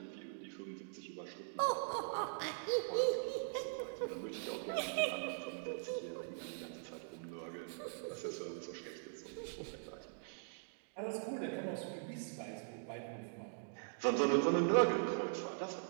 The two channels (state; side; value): silent; left; digital silence